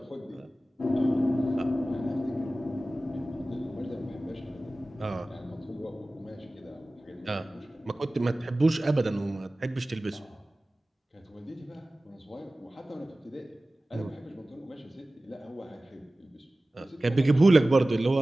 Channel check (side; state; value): both; normal; correlation 0.97